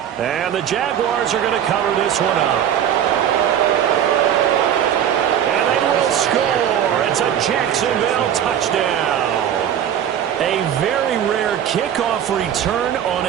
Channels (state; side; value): quieter; left; 9.7 dB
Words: And the Jaguars are going to cover this one up. And they will score. It's a Jacksonville touchdown. A very rare kickoff return on